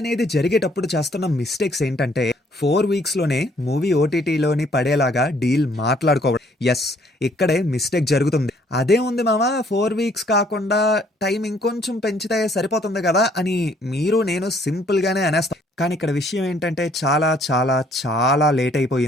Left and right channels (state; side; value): normal; both; correlation 0.63